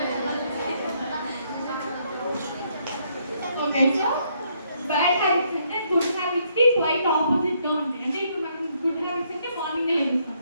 ఓకే, సో బ్యాడ్ హ్యాబిట్స్ అంటే గుడ్ హ్యాబిట్స్కి క్వైట్ ఆపోజిట్గా ఉంటాయి. అంటే ఇప్పుడు మనం గుడ్ హ్యాబిట్స్ అంటే మార్నింగే లేస్తాం.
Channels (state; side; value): inverted; both; correlation -0.72